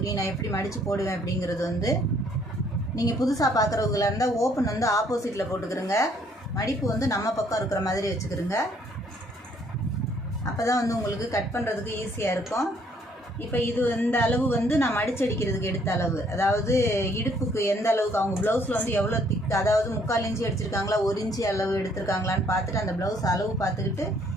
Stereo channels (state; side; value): normal; both; correlation 0.64